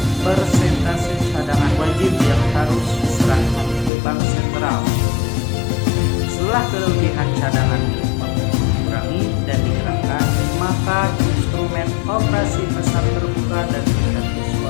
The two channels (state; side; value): drops out; right; at 3.9 s